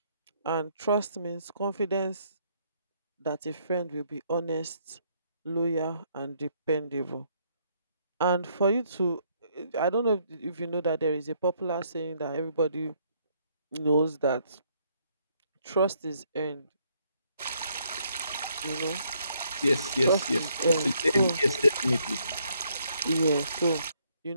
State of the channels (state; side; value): inverted; both; correlation -0.69